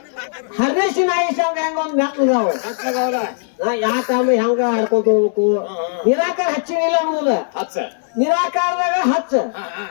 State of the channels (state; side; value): silent; right; digital silence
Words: ಹರ್ನೇಶಿನ ಆಯುಷ ಹೆಂಗ ಒಂದ್ ಮೆಟ್ಲದಾವ ಯಾಕಮ್ಮ ಹೆಂಗ ಹಾಡ್ಕೊಂತ ಹೋಗ್ಬೇಕು. ನಿರಾಕಾರ ಹಚ್ಚಿನಿಲ್ಲ ಅನ್ನೋದ ನಿರಾಕಾರದಾಗ ಹಚ್ಚ